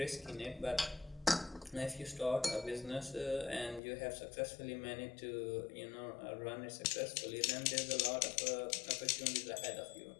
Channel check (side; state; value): right; drops out; at 3.8 s